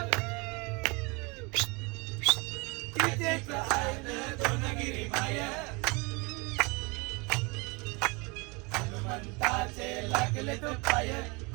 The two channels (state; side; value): quieter; left; 28.4 dB